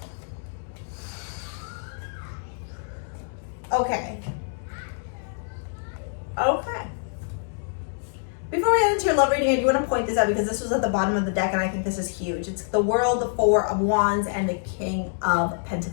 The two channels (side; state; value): right; silent; digital silence